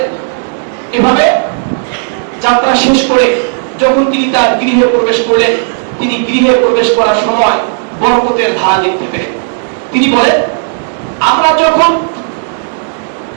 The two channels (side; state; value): left; silent; digital silence